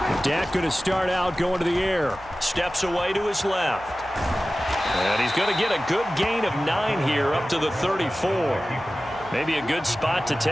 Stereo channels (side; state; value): right; noise; hum, 22 dB below the sound